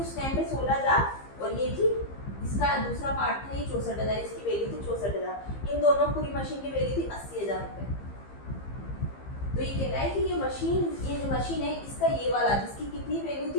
टाइम पे 16,000 और ये थी इसका दूसरा पार्ट था ये 64,000, इसकी वैल्यू थी 64,000। इन दोनों पूरी मशीन की वैल्यू थी 80,000 रुपये। तो ये कह रहा है कि ये जो मशीन है इसका ये वाला जिसकी कितनी वैल्यू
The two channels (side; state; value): right; late; 15 ms